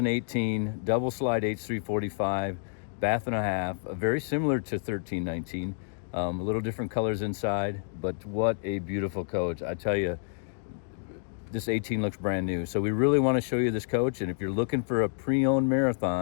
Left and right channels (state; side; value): silent; right; digital silence